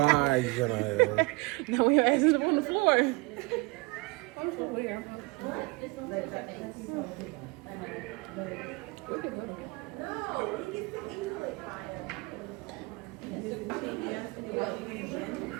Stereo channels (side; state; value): left; quieter; 25.7 dB